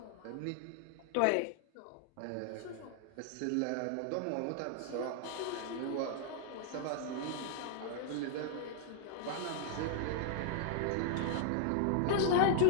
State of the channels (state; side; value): different; both; correlation -0.01